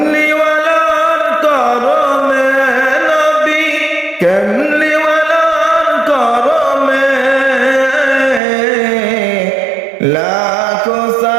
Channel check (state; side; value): drops out; left; at 8.4 s